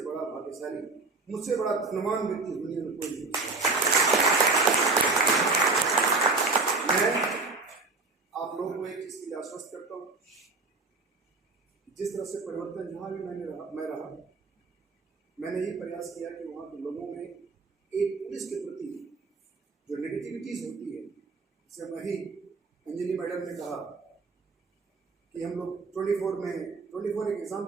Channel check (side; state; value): left; quieter; 3.8 dB